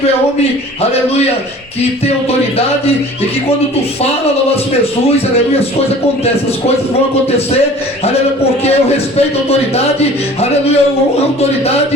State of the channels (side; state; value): both; normal; correlation 0.46